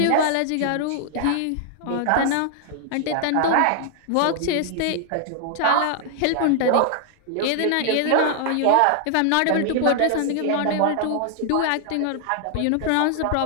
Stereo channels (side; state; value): both; different; correlation 0.00